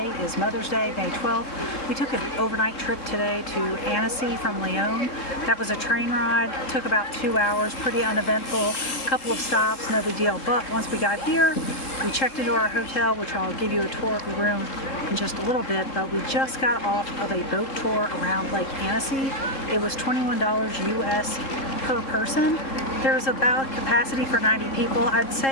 is Mother's Day, May 12th. We took an overnight trip today to Annecy from Lyon. That was a train ride. It took about 2 hours, pretty uneventful. A couple of stops, no big deal. But once we got here, we checked into our hotel, which I'll give you a tour of the room in just a little bit, but we just got off of a boat tour around Lake Annecy. It was $21 US per person. There's about capacity for 90 people. I'd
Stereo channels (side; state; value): right; late; 3.7 ms